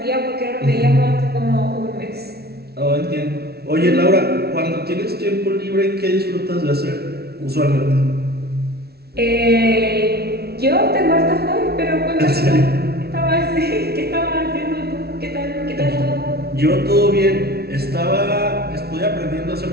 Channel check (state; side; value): late; left; 0.46 ms